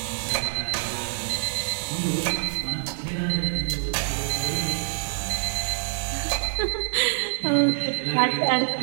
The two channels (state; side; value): silent; left; digital silence